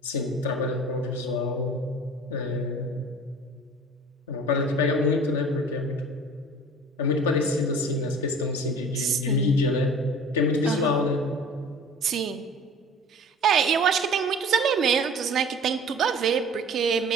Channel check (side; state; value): both; normal; correlation 0.44